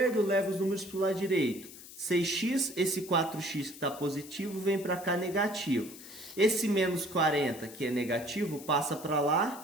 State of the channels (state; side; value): noise; left; hiss, 16 dB below the sound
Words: leva os números para o lado direito. 6x, esse 4x que está positivo, vem para cá negativo. Esse menos 40, que é negativo, passa para